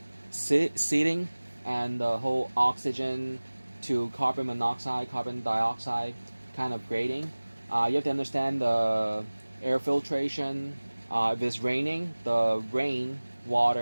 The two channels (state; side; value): inverted; both; correlation -1.00